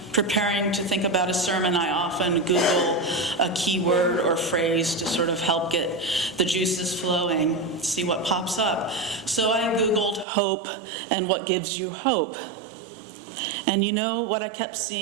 preparing to think about a sermon, I often Google a keyword or phrase to sort of help get the juices flowing, see what pops up. So I Googled hope and what gives you hope. And you know what I kept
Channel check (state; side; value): drops out; left; at 10.2 s